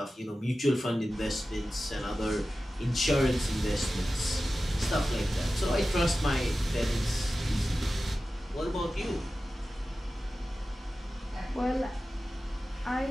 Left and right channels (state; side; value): normal; both; correlation 0.94